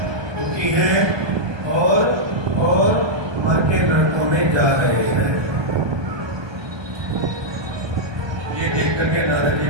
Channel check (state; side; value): late; left; 1.2 ms